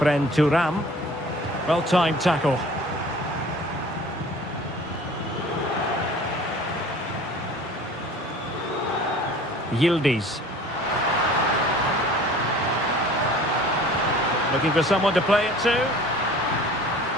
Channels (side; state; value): both; normal; correlation 0.46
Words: Turam. Well-timed tackle. Yildiz. Looking for someone to play it to.